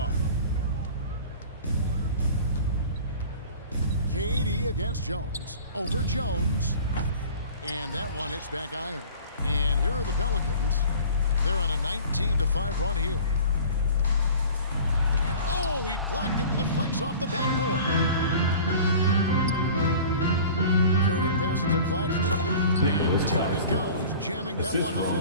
KD against Jones. Over Jones. And that one hits back iron. And here are the Pelicans. They're on a 19-5 run here. And oh, he blocked it and deflects off the backboard. Curry passes to Claxton. And down it goes, jamming that one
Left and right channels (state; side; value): inverted; both; correlation -0.42